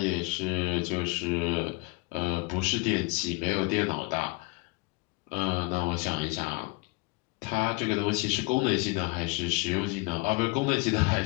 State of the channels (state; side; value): quieter; right; 25.9 dB